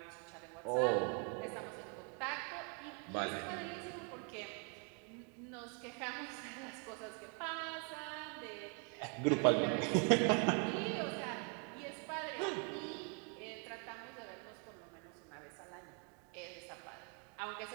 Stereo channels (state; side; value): quieter; left; 38.4 dB